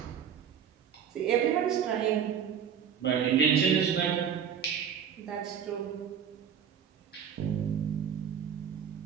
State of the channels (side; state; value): left; quieter; 8.1 dB